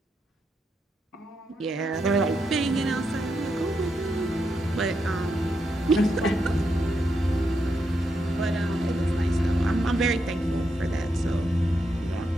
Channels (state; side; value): normal; both; correlation 0.83